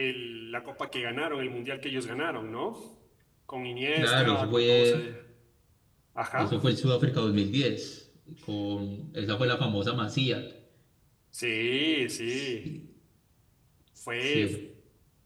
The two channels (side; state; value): both; identical; correlation 1.00